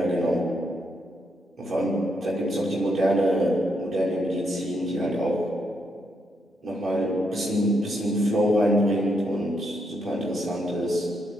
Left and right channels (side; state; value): both; normal; correlation 0.78